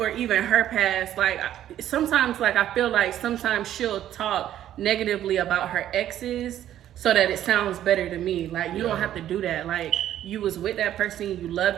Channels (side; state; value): left; quieter; 11.7 dB